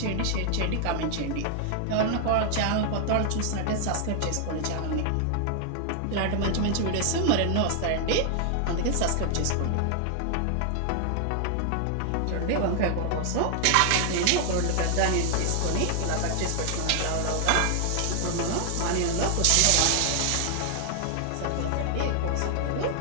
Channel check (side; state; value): both; different; correlation 0.00